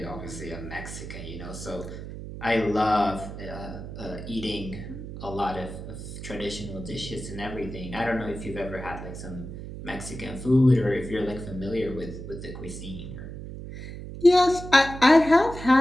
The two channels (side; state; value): right; noise; hum, 10 dB below the sound